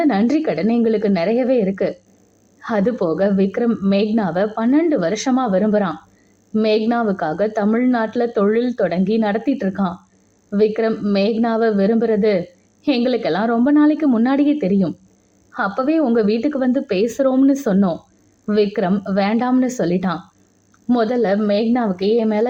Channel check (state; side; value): identical; both; correlation 1.00